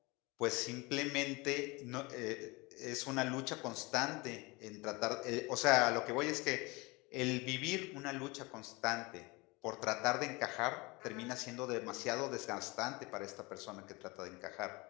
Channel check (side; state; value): right; quieter; 24.9 dB